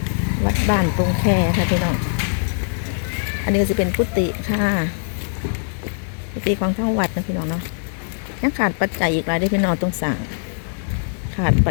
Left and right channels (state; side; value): silent; right; digital silence